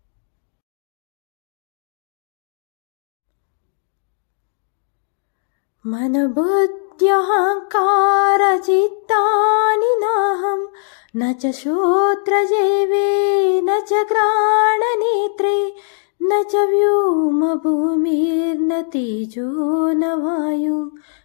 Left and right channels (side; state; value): right; silent; digital silence